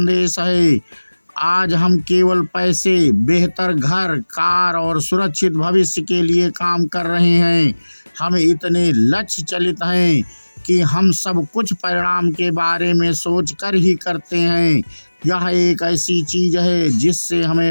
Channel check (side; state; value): both; inverted; correlation -1.00